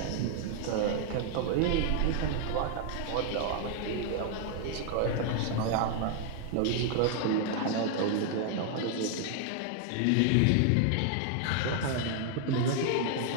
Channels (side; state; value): both; different; correlation 0.00